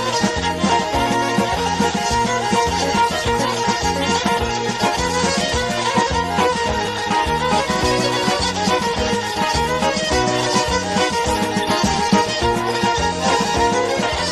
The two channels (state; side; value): identical; both; correlation 1.00